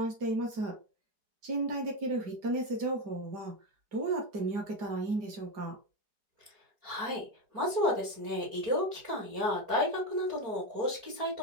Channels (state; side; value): late; left; 4.8 ms